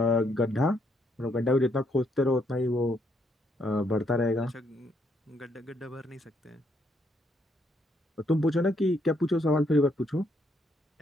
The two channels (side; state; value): both; normal; correlation 0.73